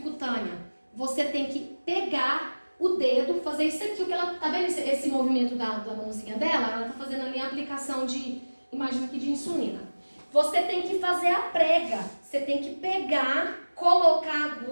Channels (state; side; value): inverted; both; correlation -1.00